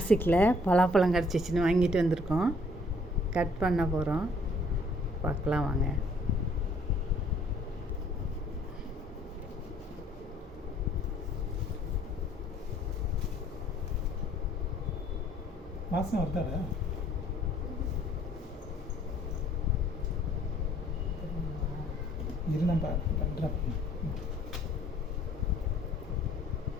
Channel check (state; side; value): normal; both; correlation 0.60